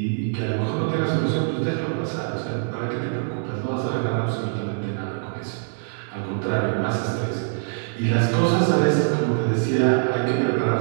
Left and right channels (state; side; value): silent; left; digital silence